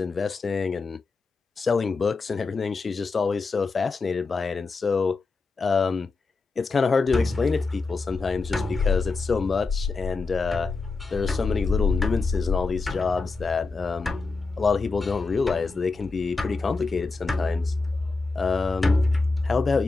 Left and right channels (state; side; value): quieter; right; 4.0 dB